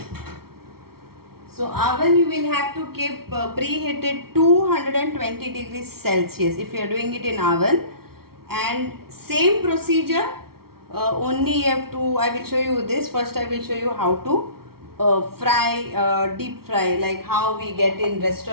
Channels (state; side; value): late; left; 0.94 ms